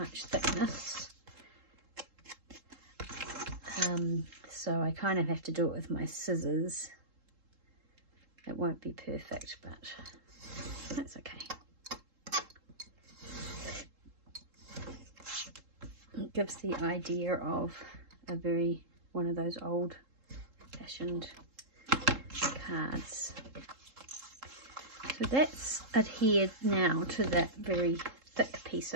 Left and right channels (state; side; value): late; left; 3.7 ms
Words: thickness. So I kind of have to do it with my scissors. It won't be perfect, but that's okay. It gives the idea of one of those old-fashioned cards. So that's adhered now to that very thick piece